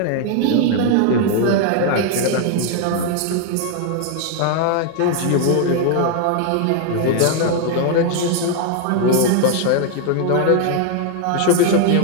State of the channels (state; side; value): different; both; correlation 0.00